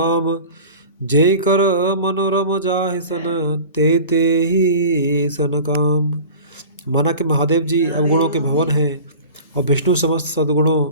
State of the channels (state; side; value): inverted; both; correlation -0.39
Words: जे कर मनोरम जाहि सन, ते ही सन काम। माना कि महादेव जी अवगुणों के भवन हैं और विष्णु समस्त सद्गुणों